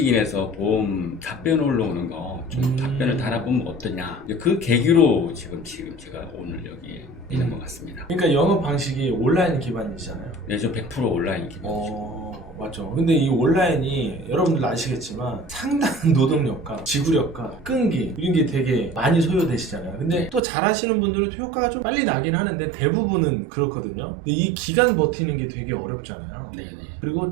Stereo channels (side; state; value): left; drops out; at 20.4 s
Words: 보험 답변 올라오는 거 좀 답변을 달아보면 어떠냐. 그 계기로 지금 제가 오늘 여기에 있는 것 같습니다. 그러니까 영업 방식이 온라인 기반이잖아요. 네, 좀 100% 온라인 기반이죠. 맞죠. 근데 이 온라인이 여러분들 아시겠지만 상당한 노동력과 지구력과 끈기 이런 게 되게 많이 소요되시잖아요. 근데 또 잘하시는 분들은 효과가 좀 빨리 나긴 하는데 대부분은 그렇거든요. 근데 이 기간 버티는 게 되게 어렵잖아요. 네네. 그리고